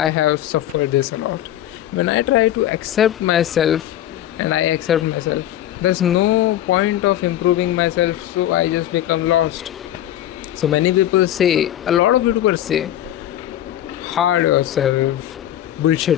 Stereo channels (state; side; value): quieter; right; 12.5 dB